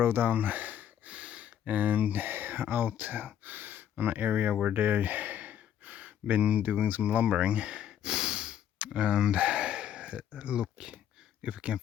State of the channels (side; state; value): right; quieter; 10.0 dB